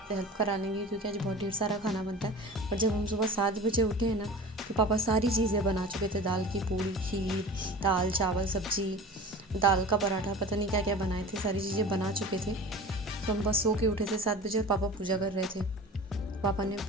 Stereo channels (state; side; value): normal; both; correlation 0.37